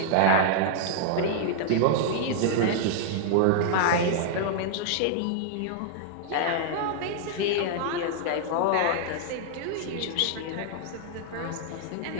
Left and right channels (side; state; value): both; different; correlation -0.01